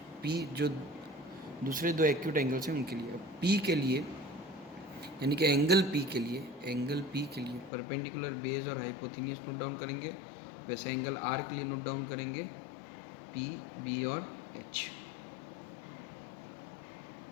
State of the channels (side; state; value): right; drops out; at 7.7 s